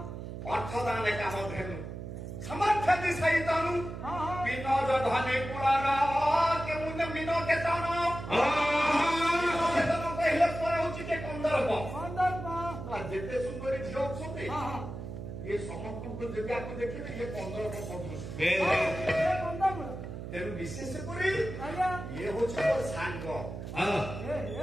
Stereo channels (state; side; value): noise; right; hum, 8 dB below the sound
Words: ଅର୍ଥଦାନେ କାମ ଧେନୁ ସମର୍ଥତି ସହିତନୁ ବିନ ଧନେ କୁଳାର କେଉଁ ବିନ କେତନ କହିଲେ ପରେ ହଉଛି କେ କନ୍ଦର୍ପ ଯେତେ ସୁନ୍ଦରୀ ଝିଅ ଅଛନ୍ତି ଇଏ ସମସ୍ତଙ୍କୁ ଯଦି ଆକୁ ଦେଖିବେ ଇଏ କନ୍ଦର୍ପ ସଦୃଶ ତେଣୁ ବିଶେଷ କରି ଇଏ ହଉଛି ମୋର ସାଙ୍ଗ